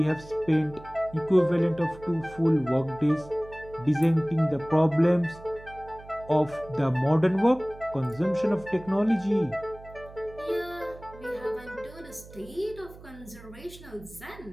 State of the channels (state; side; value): noise; right; hum, 19 dB below the sound